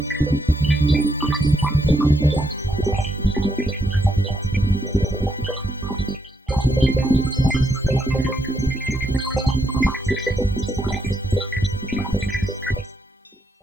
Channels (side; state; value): both; normal; correlation 0.78